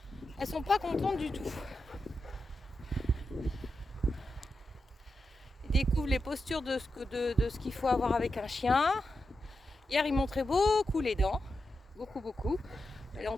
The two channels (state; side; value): normal; both; correlation 0.89